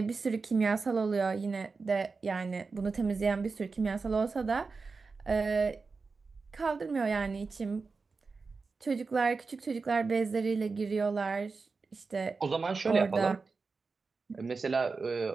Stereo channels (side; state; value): left; quieter; 4.4 dB